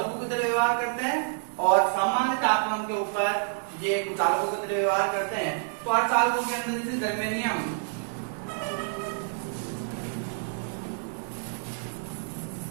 की तरह व्यवहार करते हैं और सामान्य तापमान के ऊपर ये कुचालकों की तरह व्यवहार करते हैं। तो अर्धचालकों के अंदर जैसे जर्मेनियम,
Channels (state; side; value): silent; left; digital silence